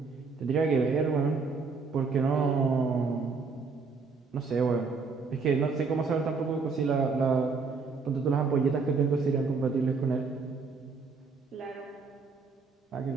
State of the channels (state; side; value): quieter; left; 4.7 dB